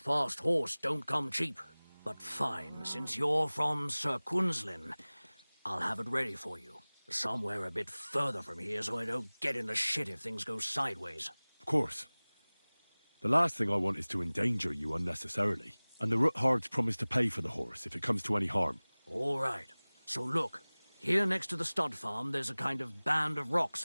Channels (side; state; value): both; inverted; correlation -1.00